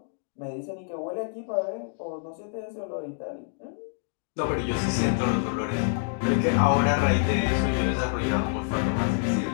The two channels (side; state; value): right; silent; digital silence